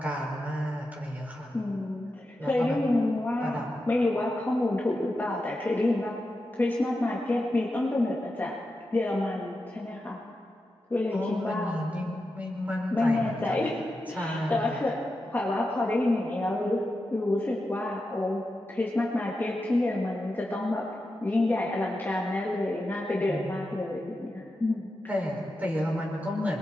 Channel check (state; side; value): normal; both; correlation 0.89